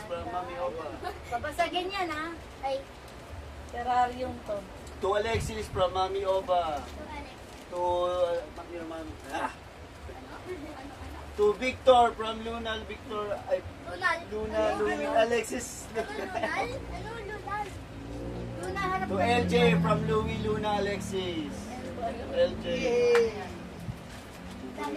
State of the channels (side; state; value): both; identical; correlation 1.00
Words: from Mami Oba. Babasagin yan ha. Ay, Terrarium to. To Alexis from Mami Oba. ito Alex. To To Victor from Luna Victor ay Lunal. Luna Ano? Louie Alexis. Ano Lunal? Ano Lunal? Luna harap To ka. LJ from Louie Luna Alexis. LJ.